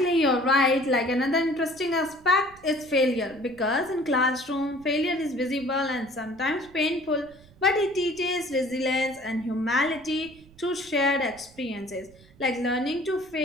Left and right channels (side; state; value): right; noise; rumble, 25 dB below the sound